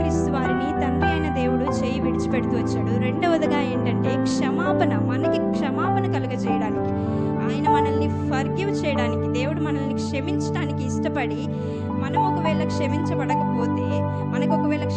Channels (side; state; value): both; identical; correlation 1.00